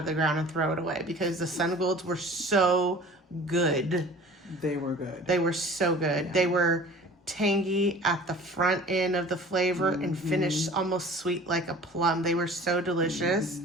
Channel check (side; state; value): both; normal; correlation 0.44